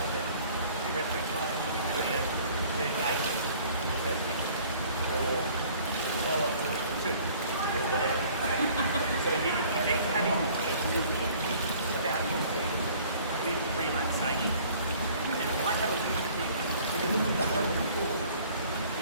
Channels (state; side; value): inverted; both; correlation -0.53